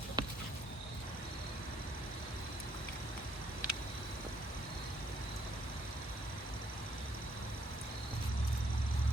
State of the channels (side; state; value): both; normal; correlation 0.68